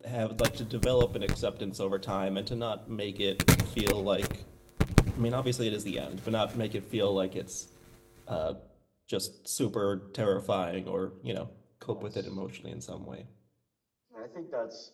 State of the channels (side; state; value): both; identical; correlation 1.00